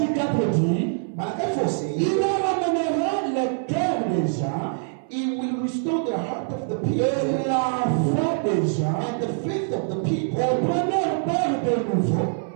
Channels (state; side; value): silent; left; 61 dB below the other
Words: 4:10. Malachi 4 said, Il ramènera le cœur des gens He will restore the heart of the people et la foi des gens and the faith of the people au premier père de nouveau.